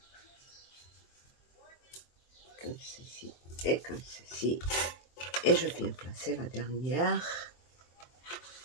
Comme ceci. Et comme ceci. Et je viens placer la dernière.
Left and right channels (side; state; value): right; late; 23 ms